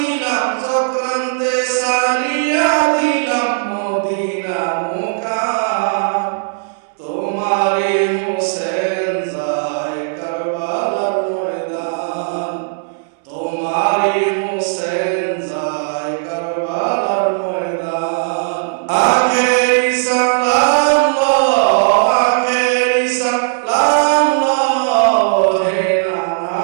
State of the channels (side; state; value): left; silent; digital silence